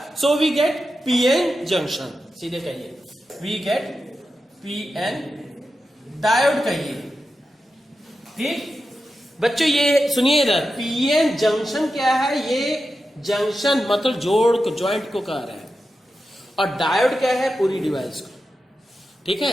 so we get pn junction, सीधे कहिए we get pn डायोड कहिए, ठीक। बच्चों ये सुनिए इधर, पीएन जंक्शन क्या है, ये जंक्शन मतलब जोड़ को, ज्वाइंट को कह रहा है, और डायोड क्या है, पूरी डिवाइस को, ठीक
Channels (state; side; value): normal; both; correlation 0.90